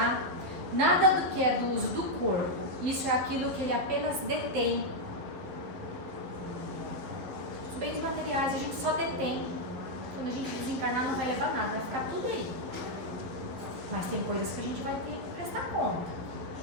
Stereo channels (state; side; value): late; left; 11 ms